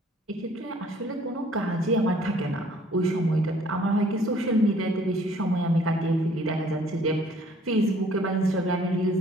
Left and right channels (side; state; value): both; normal; correlation 0.58